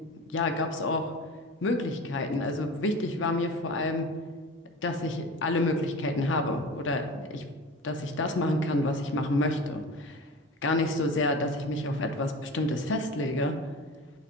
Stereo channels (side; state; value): both; normal; correlation 0.34